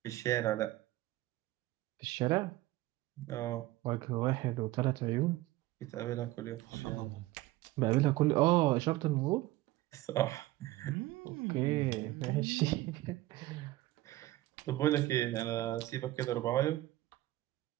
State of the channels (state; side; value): quieter; left; 17.2 dB